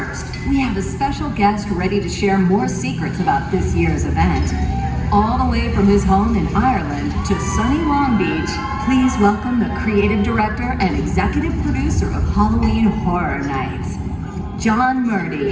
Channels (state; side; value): identical; both; correlation 1.00